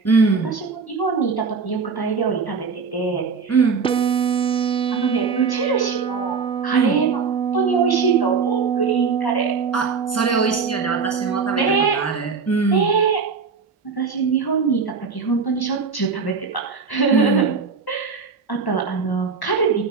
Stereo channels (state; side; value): quieter; left; 5.4 dB